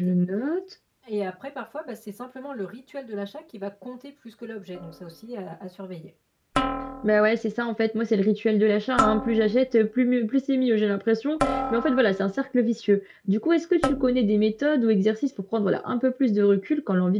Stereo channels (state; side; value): identical; both; correlation 1.00